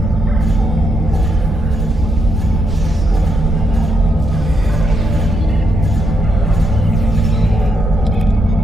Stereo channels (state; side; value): normal; both; correlation 0.79